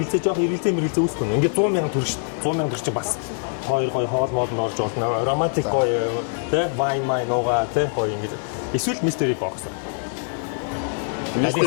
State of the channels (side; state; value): right; silent; digital silence